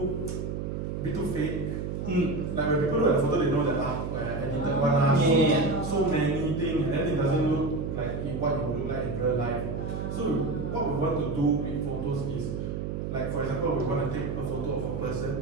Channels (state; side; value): noise; right; hum, 4 dB below the sound